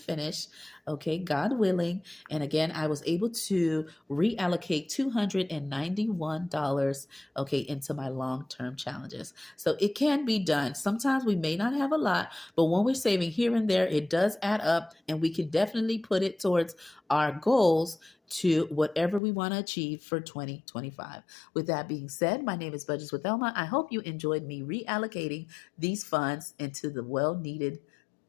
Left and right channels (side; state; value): right; drops out; at 19.2 s